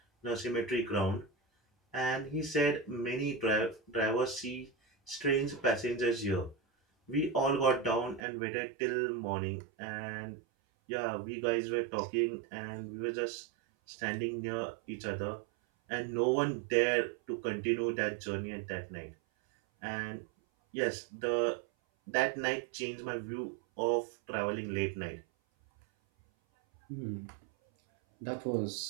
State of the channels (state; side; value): drops out; left; at 8.2 s